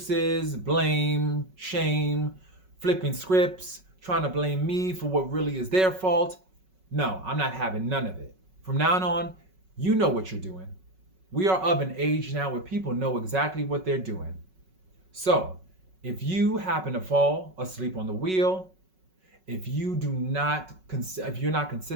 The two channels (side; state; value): left; late; 5.4 ms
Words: blame, shame, flipping scripts, trying to blame me for what really is their fault. No, I'm not having none of it. From now on, you know what you're doing. We are of an age now where people know exactly what they're doing. So, if you happen to fall asleep on the wheel, if you're not